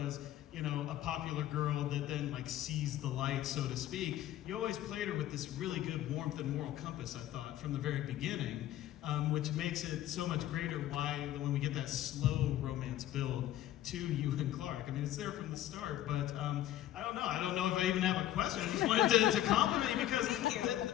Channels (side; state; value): right; quieter; 13.0 dB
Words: a popular girl that then sees the light, so to speak. You always played her with this really good warmth and moral compass, I thought, from the very beginning, which makes it so much greater when we get that slow romance build to you and Clark. I mean, it's there from the start, but I don't know. I don't know if I even have a question. I just wanted to compliment you because